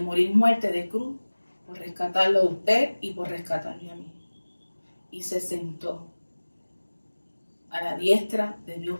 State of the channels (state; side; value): inverted; both; correlation -1.00